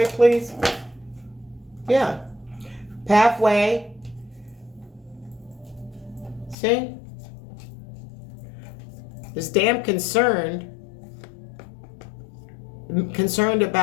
please. Yeah. Pathway. See? Is damn concerned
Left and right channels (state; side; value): drops out; right; at 6.6 s